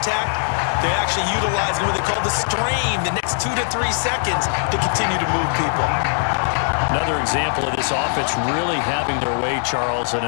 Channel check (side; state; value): right; silent; 65 dB below the other